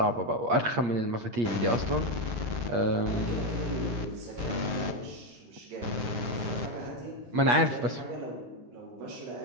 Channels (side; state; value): left; late; 8.5 ms